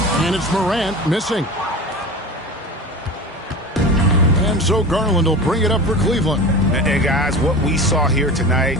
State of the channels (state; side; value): normal; both; correlation 0.31